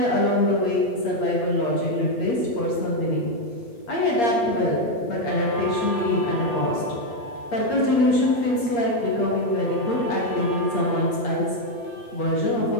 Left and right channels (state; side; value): late; right; 8.5 ms